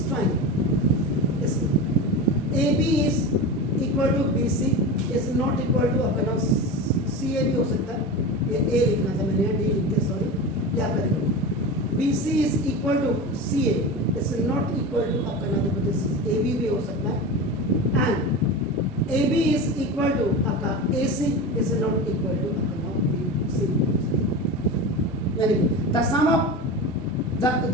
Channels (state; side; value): normal; both; correlation 0.26